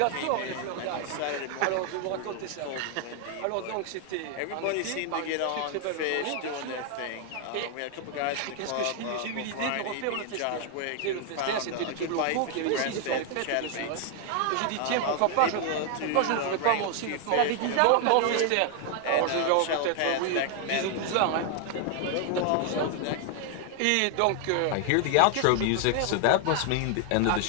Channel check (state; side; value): different; both; correlation 0.00